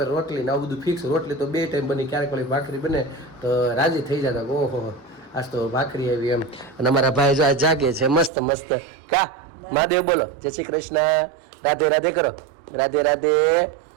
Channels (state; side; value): drops out; left; at 8.3 s